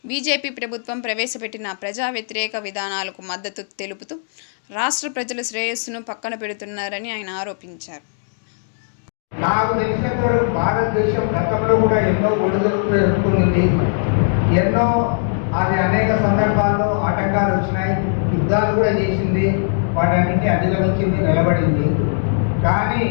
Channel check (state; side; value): silent; right; digital silence